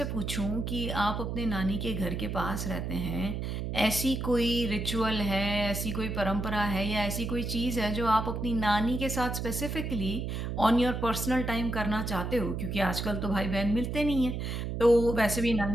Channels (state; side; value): noise; right; hum, 3 dB below the sound